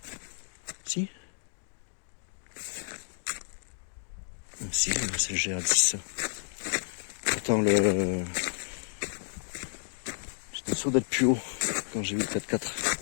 Si? Ah, si, c'est le GR10 ça. Pourtant, j'étais sûr d'être plus haut quand j'ai vu le 4x4.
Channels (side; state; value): right; silent; digital silence